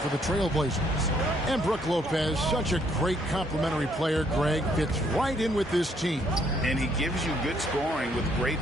the Trailblazers. And Brook Lopez, such a great complimentary player, Greg, fits right in with this team. And he gives you good scoring with great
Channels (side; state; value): both; normal; correlation 0.68